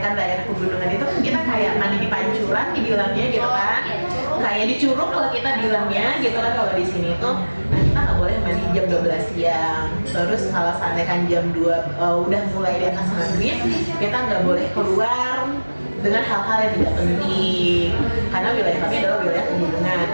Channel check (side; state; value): both; inverted; correlation -1.00